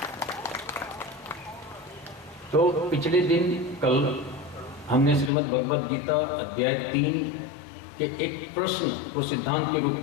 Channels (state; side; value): drops out; right; at 5.3 s